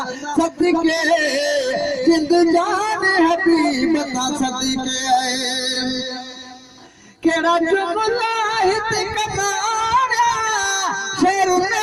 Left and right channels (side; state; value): both; identical; correlation 1.00